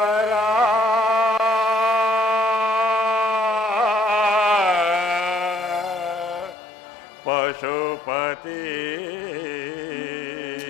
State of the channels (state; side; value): drops out; right; at 6.6 s